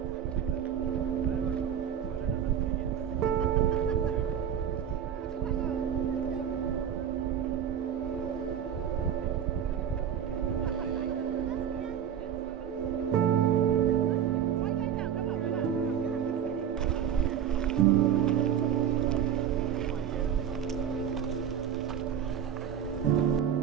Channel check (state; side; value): quieter; left; 8.9 dB